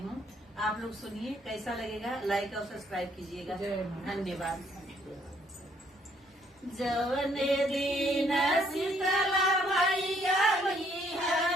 आप लोग सुनिए, कैसा लगेगा लाइक और सब्सक्राइब कीजिएगा। धन्यवाद। जवने दिन शीतला मैया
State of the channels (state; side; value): normal; both; correlation 0.67